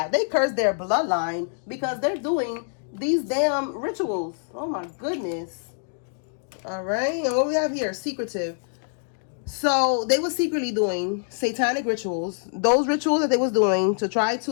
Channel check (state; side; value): silent; right; digital silence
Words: They cursed their bloodline because they're doing these damn rituals. Oh my goodness. All right, and what we have here, secretive. So they were secretly doing satanic rituals. Those rituals that they was doing to try